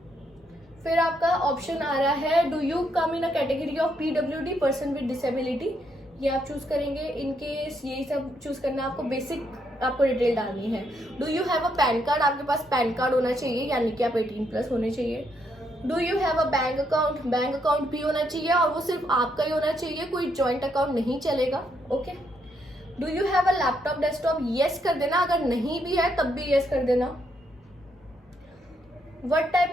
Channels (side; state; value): both; normal; correlation 0.76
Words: फिर आपका ऑप्शन आ रहा है do you come in a category of PWD, person with disability, ये आप चूज करेंगे। इनकेस यही सब चूज करना, आपको बेसिक आपको डिटेल डालनी है। Do you have a pan card, आपके पास पैन कार्ड होना चाहिए, यानी कि आप 18+ होने चाहिए। Do you have a bank account, bank account भी होना चाहिए और वो सिर्फ आपका ही होना चाहिए, कोई जॉइंट अकाउंट नहीं चलेगा। Okay, do you have a laptop desktop, yes कर देना, अगर नहीं भी है तब भी यस कर देना। What type